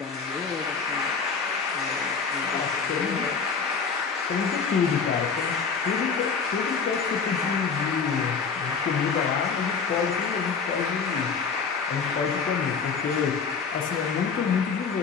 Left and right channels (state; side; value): quieter; right; 5.5 dB